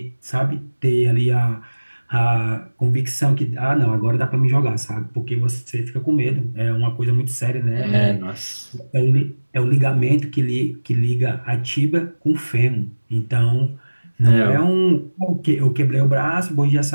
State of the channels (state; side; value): inverted; both; correlation -1.00